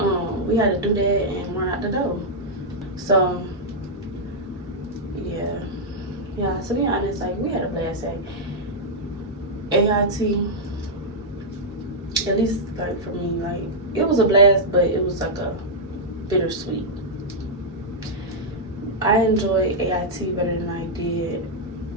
we had to do that and run out the door. So yeah. So to be honest, like we had a blast at AIT. At least like for me, like it was a blast, but it was like a bittersweet. I enjoyed AIT better than I did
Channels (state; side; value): normal; both; correlation -0.06